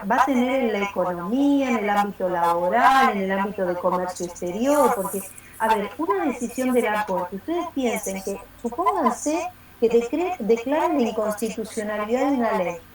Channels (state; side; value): identical; both; correlation 1.00